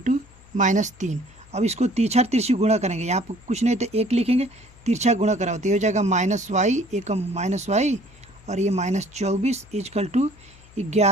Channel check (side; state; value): left; noise; hum, 25 dB below the sound